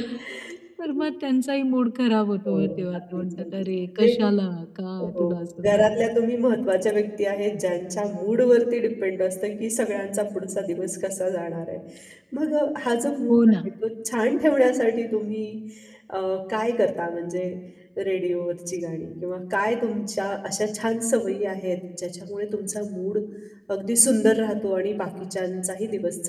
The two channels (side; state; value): both; identical; correlation 1.00